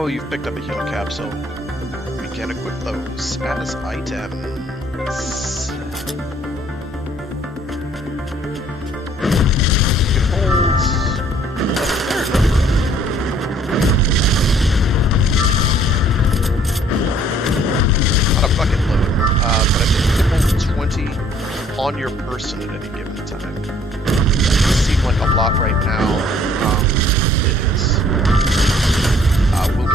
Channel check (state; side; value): normal; both; correlation 0.59